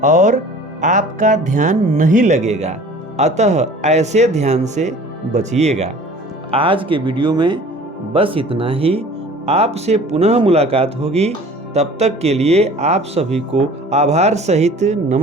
और आपका ध्यान नहीं लगेगा। अतः ऐसे ध्यान से बचिएगा। आज के वीडियो में बस इतना ही। आपसे पुनः मुलाकात होगी। तब तक के लिए आप सभी को आभार सहित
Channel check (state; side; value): normal; both; correlation 0.46